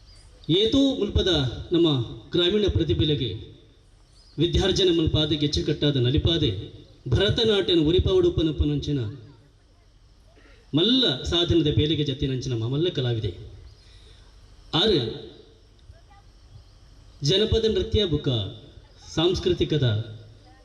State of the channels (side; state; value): both; identical; correlation 1.00